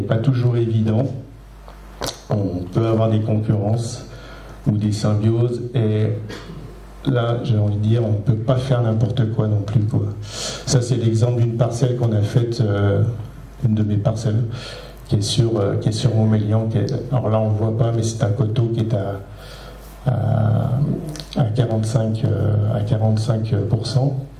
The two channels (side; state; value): both; identical; correlation 1.00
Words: pas toujours évident. On peut avoir des concurrences ou des symbioses, et là j'ai envie de dire on ne peut pas faire n'importe quoi non plus, quoi. Ça c'est l'exemple d'une parcelle qu'on a faite, une de mes parcelles qui est sur Montmélian, alors là on ne voit pas, mais c'est un coteau qui est à 45%.